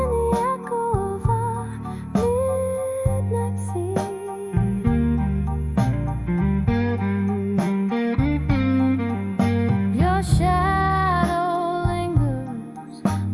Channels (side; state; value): both; identical; correlation 1.00